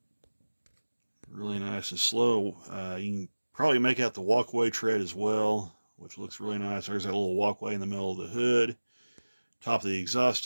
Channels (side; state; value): both; inverted; correlation -1.00